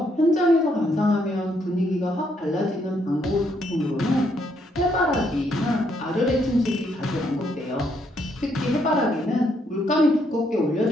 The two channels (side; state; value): both; normal; correlation 0.73